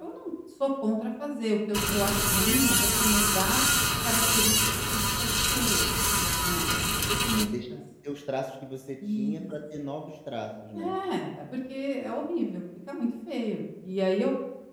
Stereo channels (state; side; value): identical; both; correlation 1.00